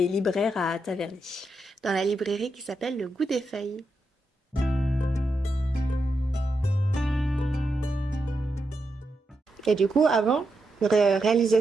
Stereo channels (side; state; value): both; normal; correlation 0.85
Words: libraire à Taverny. dans la librairie qui s'appelle Le Goût des Feuilles. Et du coup, avant,